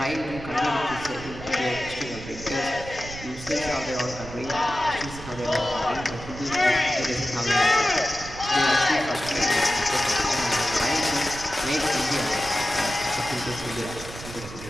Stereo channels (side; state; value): right; noise; rumble, 13 dB below the sound